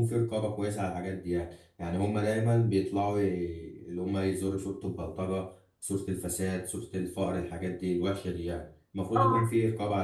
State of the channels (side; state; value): both; identical; correlation 1.00